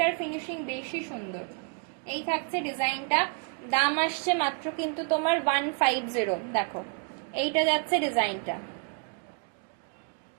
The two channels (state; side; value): quieter; left; 39.4 dB